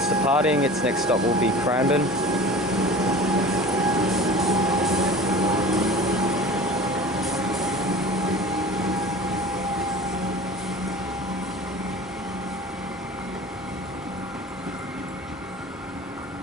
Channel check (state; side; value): normal; both; correlation 0.39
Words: departing, its next stop will be Cranbourne.